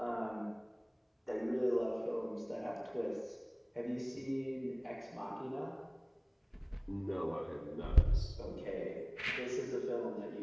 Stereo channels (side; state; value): both; identical; correlation 1.00